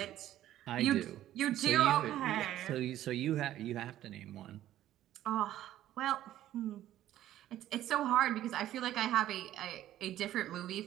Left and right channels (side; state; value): left; quieter; 13.0 dB